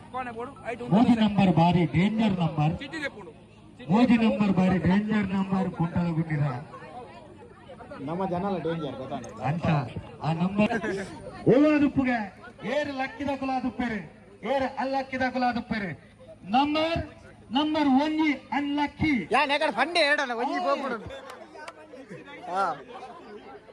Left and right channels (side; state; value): both; identical; correlation 1.00